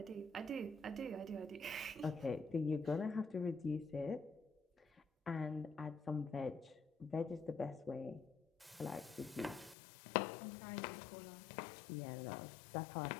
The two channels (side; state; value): right; drops out; at 9.8 s